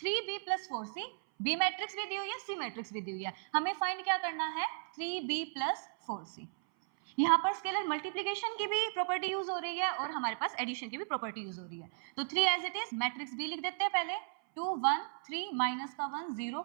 + 4c, B matrix भी दी हुई है, सी मैट्रिक्स भी दी हुई है, हमें फाइंड क्या करना है 3b + 4c। यहाँ पर स्केलर मल्टीप्लिकेशन की भी प्रॉपर्टी यूज हो रही है और हमारे पास एडिशन की भी प्रॉपर्टी यूज हो रही है। तो 3 as it is, matrix B लिख देते हैं पहले, 2 1 3 माइनस का 1 0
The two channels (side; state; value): left; silent; 54 dB below the other